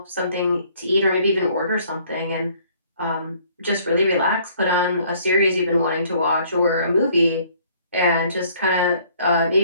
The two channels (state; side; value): inverted; both; correlation -0.60